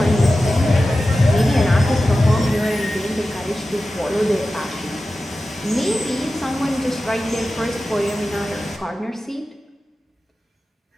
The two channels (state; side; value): normal; both; correlation 0.94